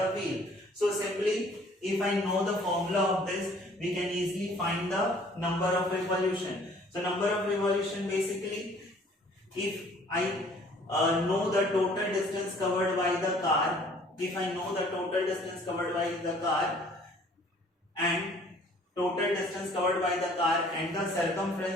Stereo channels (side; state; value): both; normal; correlation 0.56